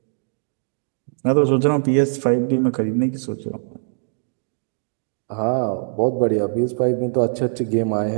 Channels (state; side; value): silent; left; digital silence